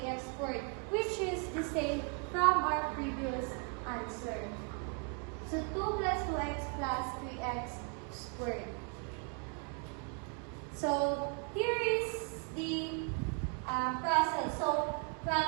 squared, which is the same from our previous answer. So 2 plus 2x plus 3x squared. So here is the process. So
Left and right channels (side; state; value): left; quieter; 38.9 dB